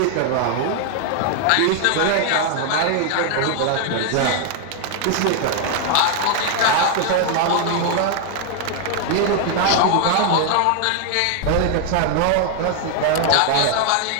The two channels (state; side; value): different; both; correlation 0.00